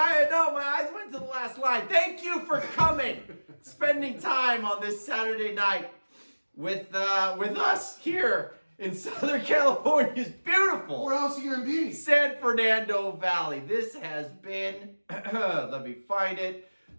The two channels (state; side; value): inverted; both; correlation -1.00